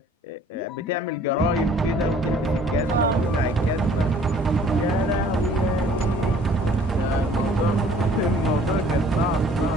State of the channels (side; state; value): both; normal; correlation 0.54